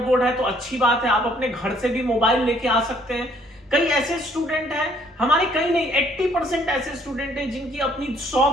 है तो अच्छी बात है, आप अपने घर से भी मोबाइल लेके आ सकते हैं। कई ऐसे स्टूडेंट हैं हमारे, कई नहीं 80% ऐसे स्टूडेंट हैं जिनकी अपनी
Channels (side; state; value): both; normal; correlation 0.63